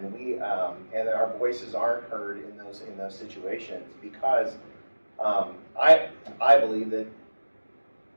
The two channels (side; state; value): both; inverted; correlation -1.00